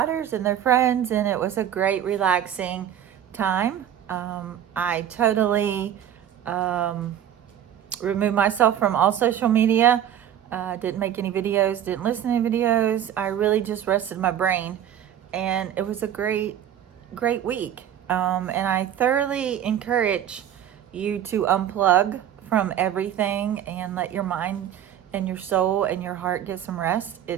and their friends, and it was a great, relaxing time. I totally removed myself from all social media. Didn't make any videos, didn't listen to any videos. I really just rested my brain, and it was a great week. And I thoroughly encourage you to unplug from everything and let your mind and your soul and your heart get some rest.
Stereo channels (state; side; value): quieter; left; 10.4 dB